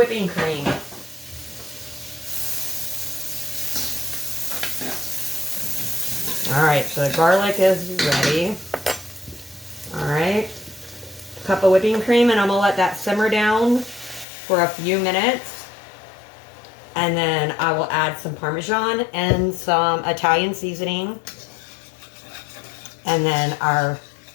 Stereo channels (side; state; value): right; drops out; at 14.2 s